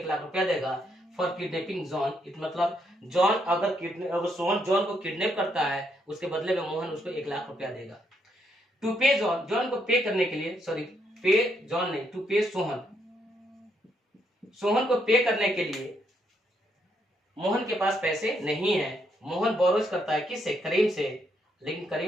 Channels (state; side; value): normal; both; correlation 0.75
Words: रुपया देगा फॉर किडनैपिंग जॉन। इट मतलब जॉन अगर सोहन जॉन को किडनैप करता है उसके बदले में मोहन उसको 1,00,000 रुपया देगा। टू पे जॉन, जॉन को पे करने के लिए, सॉरी पे जॉन नहीं, टू पे सोहन, सोहन को पे करने के लिए मोहन के पास पैसे नहीं है। मोहन बोरोज करता है किससे? करीम से। लेकिन